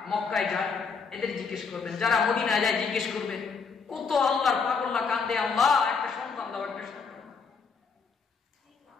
মক্কায় যায় এদের জিজ্ঞেস করবেন, যারা মদিনায় যায় জিজ্ঞেস করবেন, কত আল্লাহর পাগল্লা কান্দে, আল্লাহ একটা সন্তান দাও, একটা সন্তান।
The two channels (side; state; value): right; quieter; 5.4 dB